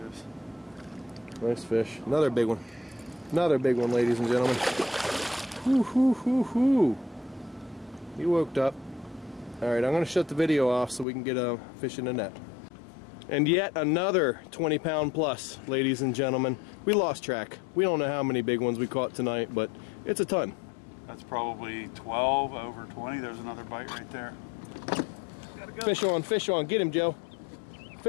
is. Nice fish. Another big one. Another big one, ladies and gentlemen. Hoo, hoo, hoo, hoo. He woke up. Alright, I'm going to shut the video off so we can get a fish in the net. And yet another 20-pound plus, ladies and gentlemen. We lost track. We don't know how many big ones we caught tonight, but it's a ton. That's probably 12 over 20. There's another bite right there. Gotta go. Fish on, fish on. Get him, Joe.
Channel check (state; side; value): drops out; right; at 11.1 s